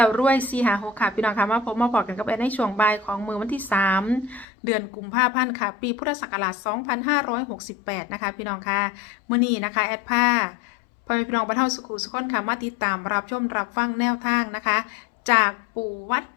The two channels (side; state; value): right; drops out; at 4.5 s